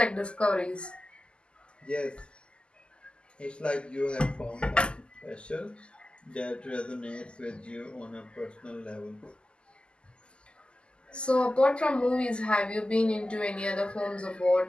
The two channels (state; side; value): late; right; 0.050 ms